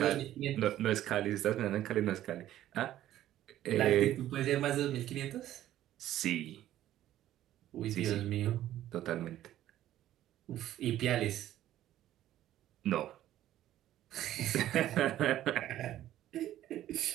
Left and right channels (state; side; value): quieter; left; 13.0 dB